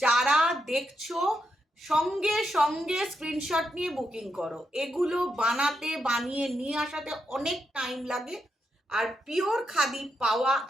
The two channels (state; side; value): normal; both; correlation 0.83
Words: যারা দেখছো সঙ্গে সঙ্গে স্ক্রিনশট নিয়ে বুকিং করো। এগুলো বানিয়ে নিয়ে আসাতে অনেক টাইম লাগে, আর পিওর খাদি পাওয়া